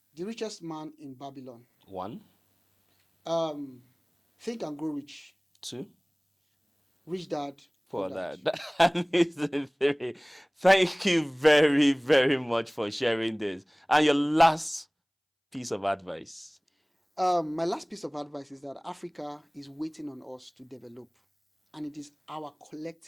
Richest Man in Babylon. 1, Think and Grow Rich. 2, Rich Dad, Poor for Dad. that. That is the 3. Thank you very, very much for sharing this. And your last piece of advice. My last piece of advice is that Africa is waiting on us to develop, and it is our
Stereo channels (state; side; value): identical; both; correlation 1.00